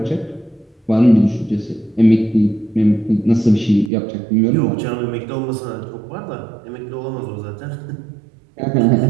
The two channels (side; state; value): left; drops out; at 3.9 s